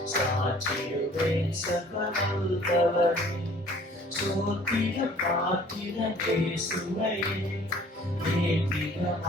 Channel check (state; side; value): normal; both; correlation 0.53